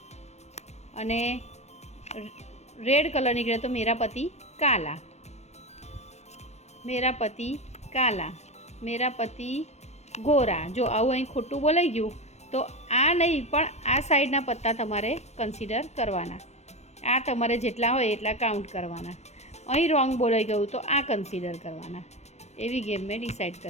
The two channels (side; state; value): right; late; 0.32 ms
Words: અને રેડ કલર નીકળે તો મેરા પતિ કાલા, મેરા પતિ કાલા, મેરા પતિ ગોરા। જો આવું અહીં ખોટું બોલાઈ ગયું તો આ નહીં પણ આ સાઈડના પત્તા તમારે કન્સિડર કરવાના। આ તમારે જેટલા હોય એટલા કાઉન્ટ કરવાના। અહીં રોંગ બોલાઈ ગયું તો આ કન્સિડર કરવાના। એવી ગેમ મેં ડિસાઈડ